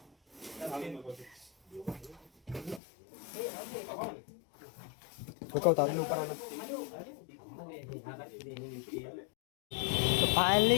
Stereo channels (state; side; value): drops out; right; at 2.8 s